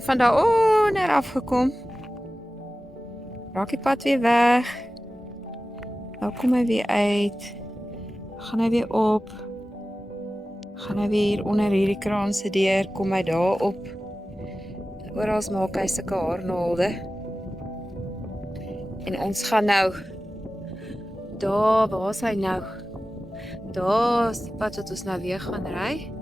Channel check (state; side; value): normal; both; correlation 0.95